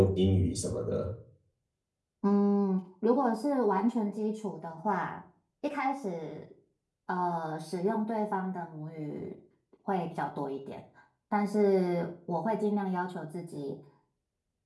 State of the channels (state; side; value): identical; both; correlation 1.00